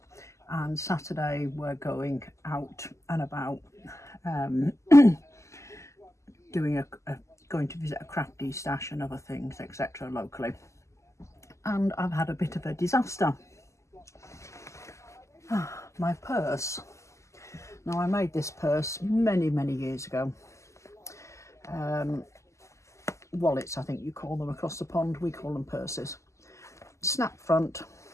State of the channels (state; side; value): late; right; 0.14 ms